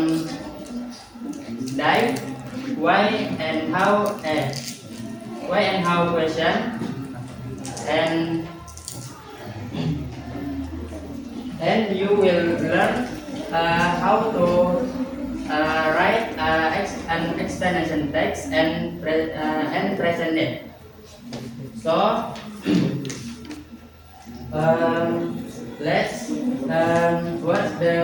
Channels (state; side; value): identical; both; correlation 1.00